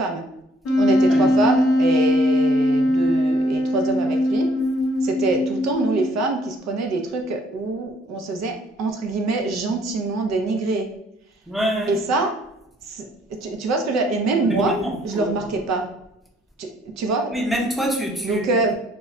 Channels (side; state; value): both; normal; correlation 0.64